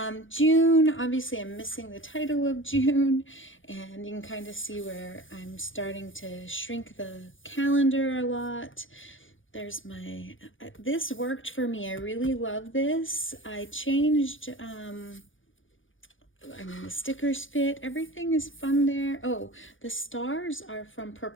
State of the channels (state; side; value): late; right; 0.57 ms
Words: June, obviously I'm missing the title of June, and you can kind of see where I'm starting to shrink the calendar a lot. There's my, this worked for me. I really love this. I changed I mean, the stickers fit. Everything is fun there. Oh, the stars are from